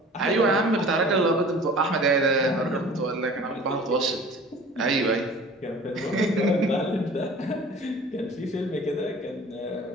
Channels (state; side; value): normal; both; correlation 0.44